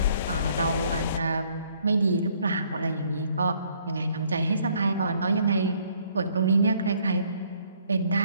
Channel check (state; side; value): inverted; both; correlation -0.64